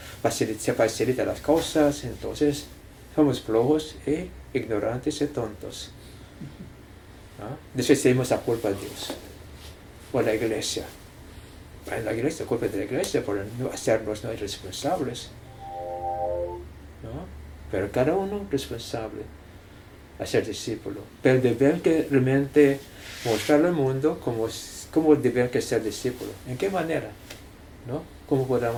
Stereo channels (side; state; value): both; identical; correlation 1.00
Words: se facilita las cosas, entonces somos flojos e ignorantes y tontos. ¿No? Después tenemos la culpa de Dios o la iglesia. La iglesia, culpa de la iglesia por no hacernos no responsables. ¿No? Pero cada uno responsable a ser discípulo. Pero deben que realmente mostrar al mundo cómo deben que ser discípulos. ¿En qué manera? ¿No? ¿Cómo